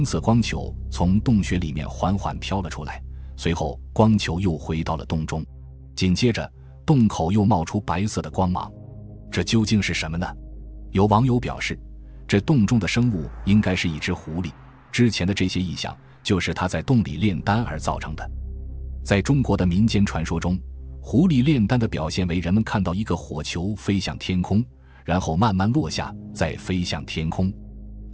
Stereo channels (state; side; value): identical; both; correlation 1.00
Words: 色光球从洞穴里面缓缓飘了出来，随后光球又回到了洞中，紧接着洞口又冒出白色的光芒。这究竟是什么呢？有网友表示，这洞中的生物应该是一只狐狸，之前的这些异象就是它在洞里炼丹而造成的。在中国的民间传说中，狐狸炼丹的表现为人们看到一个火球飞向天空，然后慢慢落下，再飞向天空。